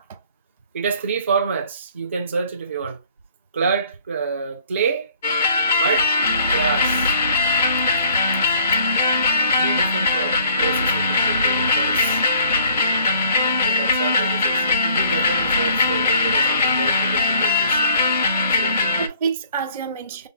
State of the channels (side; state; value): both; inverted; correlation -0.56